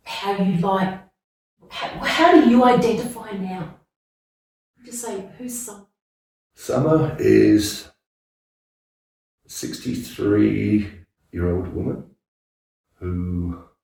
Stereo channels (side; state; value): both; identical; correlation 1.00